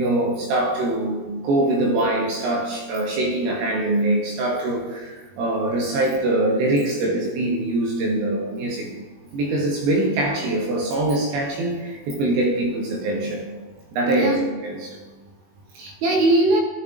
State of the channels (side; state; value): left; late; 21 ms